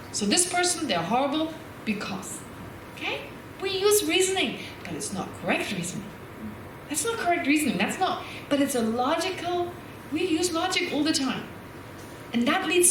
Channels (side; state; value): both; identical; correlation 1.00